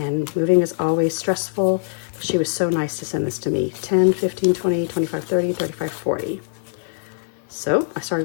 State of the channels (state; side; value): silent; right; 56 dB below the other